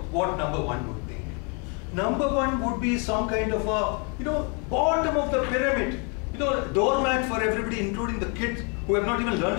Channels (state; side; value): quieter; right; 35.6 dB